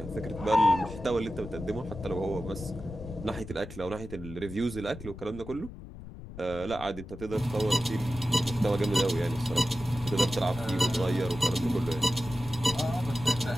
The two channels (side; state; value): left; noise; rumble, 13 dB below the sound